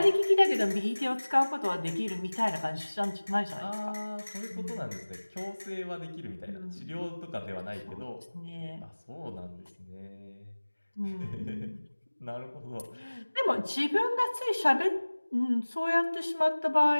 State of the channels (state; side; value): inverted; both; correlation -1.00